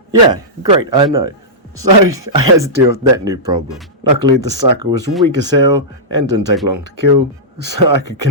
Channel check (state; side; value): normal; both; correlation -0.14